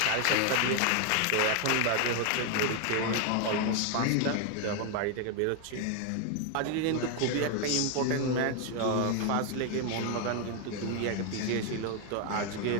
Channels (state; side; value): different; both; correlation 0.01